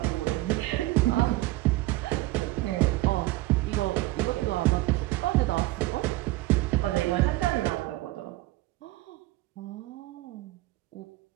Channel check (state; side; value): quieter; left; 18.9 dB